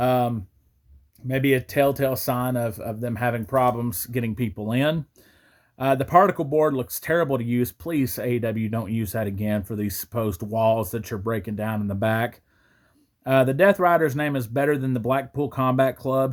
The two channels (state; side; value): identical; both; correlation 1.00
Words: Maybe a telltale sign of them having problems getting people in. The particle board looks terrible to use. Please, AEW, don't use that again for these supposed walls that you're breaking down in the back. The Death Rider's name is better than the Blackpool Combat Club.